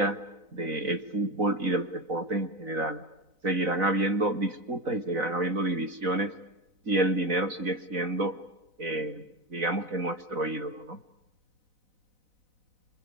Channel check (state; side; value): late; left; 4.0 ms